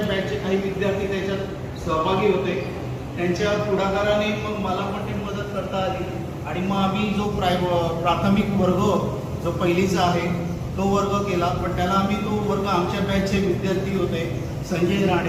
बॅचचे काही विद्यार्थी त्याच्यात सहभागी होते. त्यांच्या पुढाकाराने मग मला पण ती मदत करता आली. आणि मग आम्ही जो प्राथमिक वर्ग जो पहिलीचा आहे तो वर्ग केला. पण त्याला आम्ही तो वर्ग आमच्या बॅचचे विद्यार्थी होते. संजय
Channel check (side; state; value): both; identical; correlation 1.00